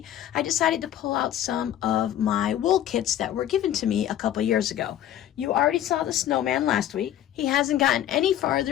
I decided to pull out some of my wool kits that were given to me a couple years ago. You already saw the snowman last week. He hasn't gotten any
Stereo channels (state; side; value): quieter; right; 11.6 dB